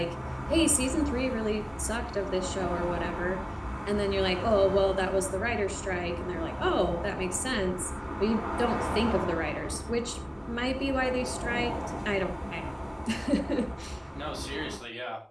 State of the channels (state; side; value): identical; both; correlation 1.00